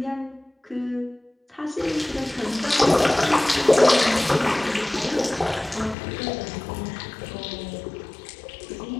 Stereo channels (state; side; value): drops out; right; at 6.0 s